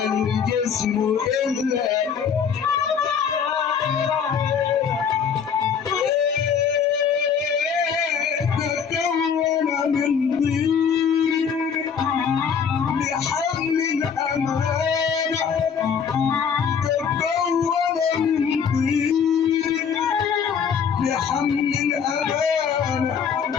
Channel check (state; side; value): quieter; right; 6.9 dB